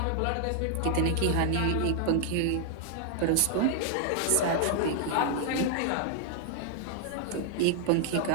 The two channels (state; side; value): different; both; correlation -0.01